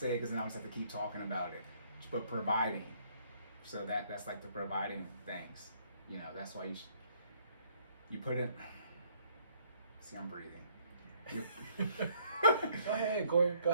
it because then I'll just have to keep talking about it. But providing. So that's the providing things. That's why you put it. See, I'm breathing. Go ahead, Cory. Go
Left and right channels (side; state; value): both; inverted; correlation -0.64